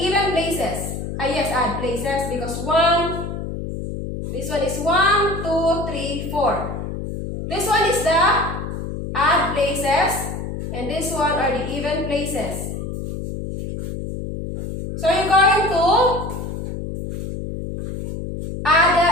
places. Yes, odd places because 1, this one is 1, 2, 3, 4. This one is the odd places and this one are the even places. So you're going to add the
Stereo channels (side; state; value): left; noise; hum, 6 dB below the sound